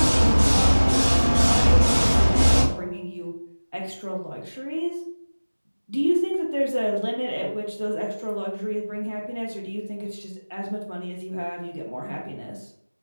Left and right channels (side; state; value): both; inverted; correlation -1.00